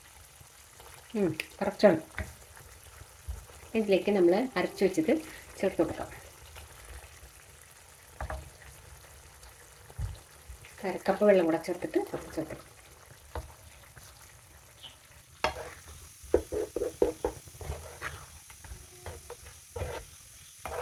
കറക്റ്റാണ്. ഇതിലേക്ക് നമ്മൾ അരച്ച് വെച്ചത് ചേർത്ത് കൊടുക്കാം. 1/2 കപ്പ് വെള്ളം കൂടെ ചേർത്തിട്ട് ചേർത്ത്.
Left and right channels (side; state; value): both; identical; correlation 1.00